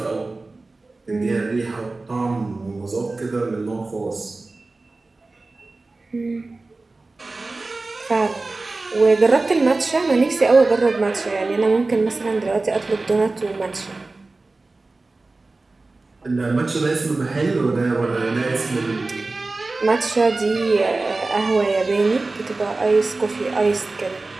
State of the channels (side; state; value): left; quieter; 3.4 dB